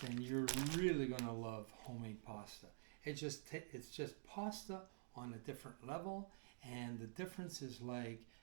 then you're really going to love homemade pasta. It's just pasta on a different level, and the difference is like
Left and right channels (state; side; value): silent; left; digital silence